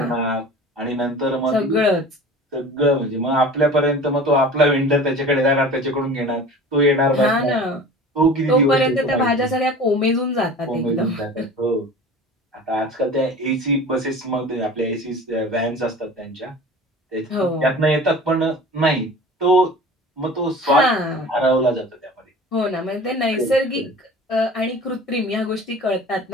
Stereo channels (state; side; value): normal; both; correlation 0.39